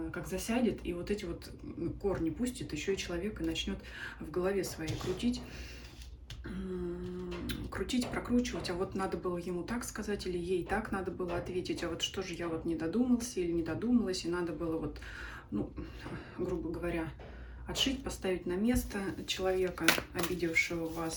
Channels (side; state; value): both; identical; correlation 1.00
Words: как засядет, и вот эти вот корни пустит, еще и человек и начнет в голове своей крутить, прокручивать, а вот надо было ему так сказать, или ей так надо было ответить, а вот что же я вот не додумался или не додумалась, и надо было вот, ну, грубо говоря, отшить, поставить на место человека, обидевшего